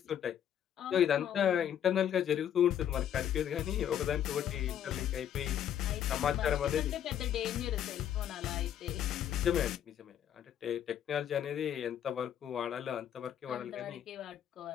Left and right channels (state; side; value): quieter; right; 10.0 dB